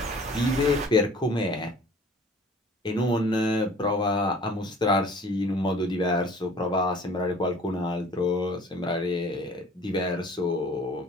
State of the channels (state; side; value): normal; both; correlation 0.49